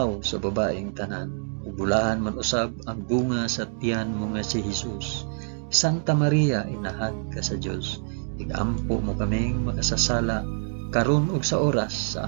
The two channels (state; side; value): silent; left; digital silence